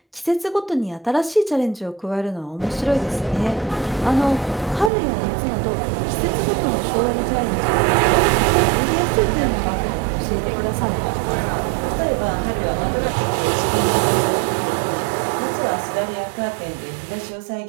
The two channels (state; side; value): drops out; left; at 4.9 s